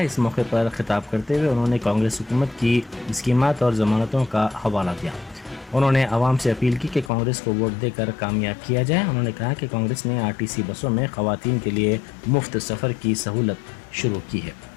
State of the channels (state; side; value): drops out; right; at 7.1 s